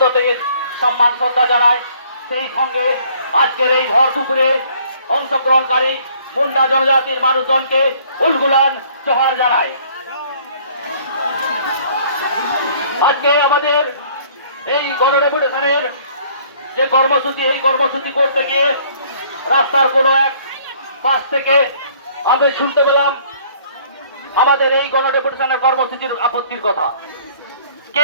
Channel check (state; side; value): inverted; both; correlation -0.58